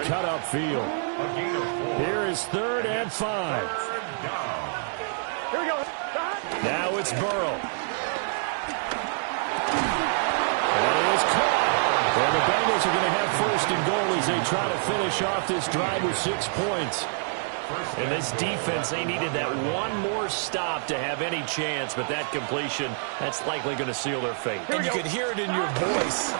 cut upfield. Here is 3rd and 5. Here we go. Now it's Burrow. And it is caught. And the Bengals are going to have 1st and goal as they try to finish off this drive with 6 points. And this defense, they needed that one more stop to have any chance, but that completion, that's likely going to seal their fate. And you could hear it in your voice,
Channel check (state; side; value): silent; left; digital silence